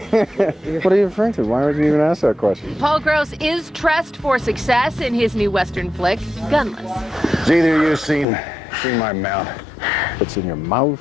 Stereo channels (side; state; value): right; drops out; at 8.2 s